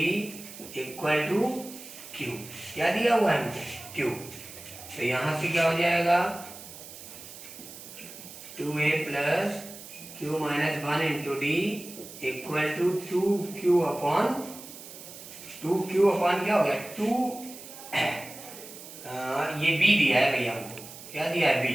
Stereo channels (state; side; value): noise; right; hiss, 15 dB below the sound